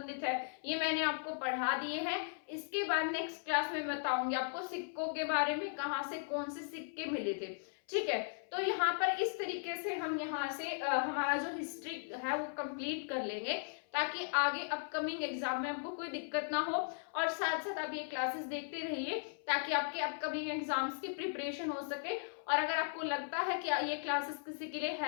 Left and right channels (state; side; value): silent; right; 53 dB below the other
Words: है, ये मैंने आपको पढ़ा दिए हैं। इसके बाद नेक्स्ट क्लास में बताऊंगी आपको सिक्कों के बारे में, कहाँ से कौन से सिक्के मिले थे। ठीक है, तो यहाँ पर इस तरीके से हम यहाँ से हमारा जो हिस्ट्री है वो कंप्लीट कर लेंगे, ताकि आगे अपकमिंग एग्जाम में आपको कोई दिक्कत ना हो। और साथ साथ आप ये क्लासेस देखते रहिए, ताकि आपके अपकमिंग एग्जाम्स की प्रिपरेशन हो सके। और अगर आपको लगता है कि ये क्लासेस किसी के लिए